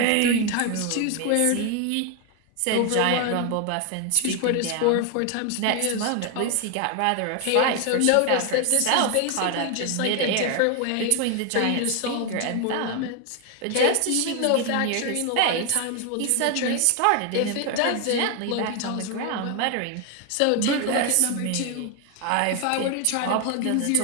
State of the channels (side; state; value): both; different; correlation 0.01